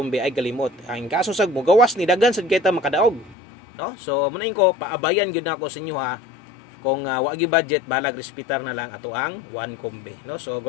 ay kalimot. Ang kaso sag mo gawas ni daghan sad kita makadaog. No? So munain ko paabayan gyud nako sa inyo ha. Kung wa gyud budget, balag respetar na lang ato ang 1 kombe, no? So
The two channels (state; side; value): drops out; right; at 3.4 s